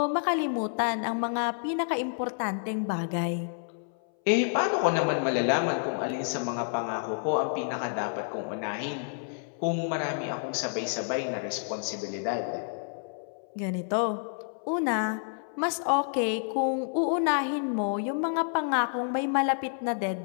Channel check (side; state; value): right; silent; 58 dB below the other